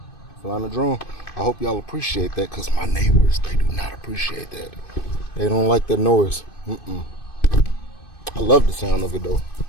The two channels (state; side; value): late; right; 2.5 ms